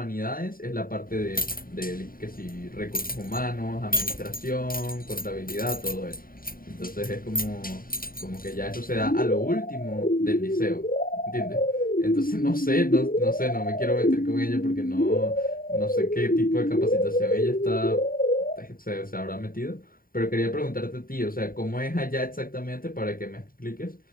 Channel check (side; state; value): right; late; 0.41 ms